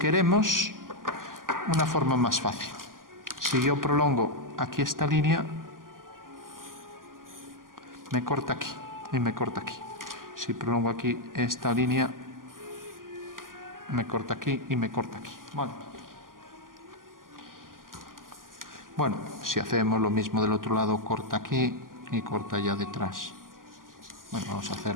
una forma más fácil. Si yo prolongo aquí esta línea, me corta aquí y me corta aquí. Si prolongo aquí esta línea, me corta aquí y me corta aquí. Vale. Bueno, si hacemos lo mismo del otro lado, corta aquí y corta allá detrás. Bueno, vamos a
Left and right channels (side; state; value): left; late; 0.91 ms